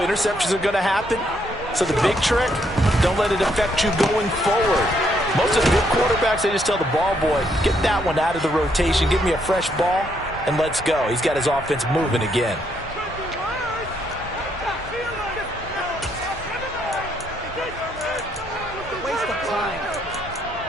interceptions are going to happen. So the big trick, don't let it affect you going forward. Most of the good quarterbacks, they just tell the ball boy, get that one out of the rotation, give me a fresh ball, and let's go. He's got his offense moving again.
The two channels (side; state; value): both; normal; correlation 0.73